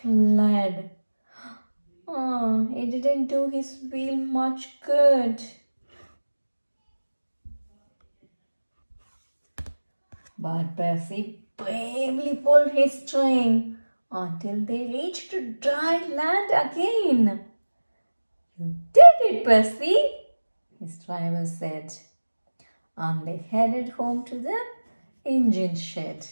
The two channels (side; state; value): both; inverted; correlation -1.00